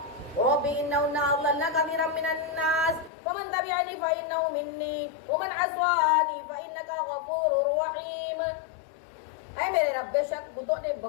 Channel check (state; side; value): drops out; right; at 3.1 s